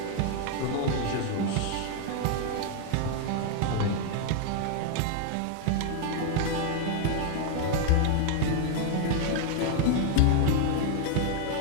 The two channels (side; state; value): both; different; correlation 0.00